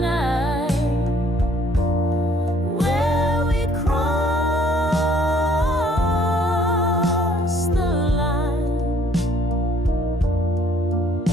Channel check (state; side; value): normal; both; correlation 0.61